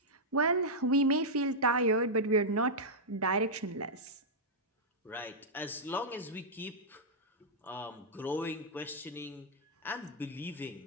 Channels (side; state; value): both; normal; correlation -0.08